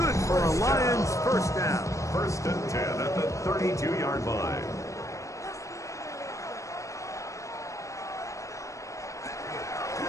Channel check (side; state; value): right; late; 0.15 ms